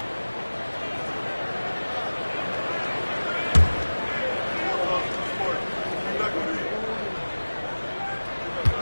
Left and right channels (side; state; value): both; inverted; correlation -1.00